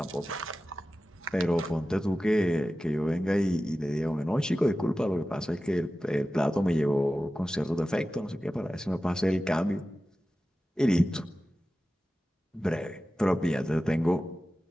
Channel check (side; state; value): both; normal; correlation 0.94